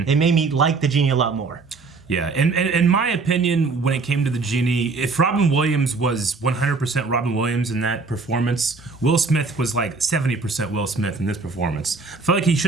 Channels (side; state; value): left; quieter; 4.2 dB